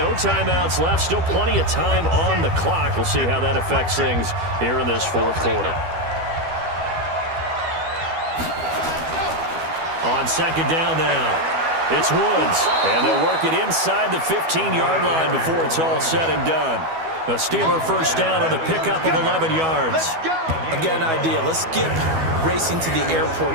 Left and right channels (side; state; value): left; late; 12 ms